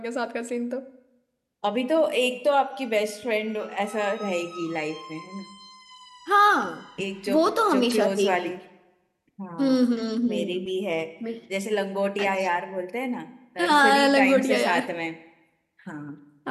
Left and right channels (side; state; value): both; identical; correlation 1.00